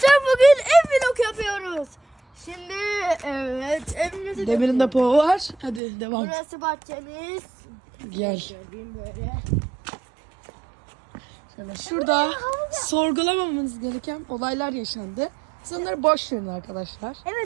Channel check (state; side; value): drops out; left; at 5.8 s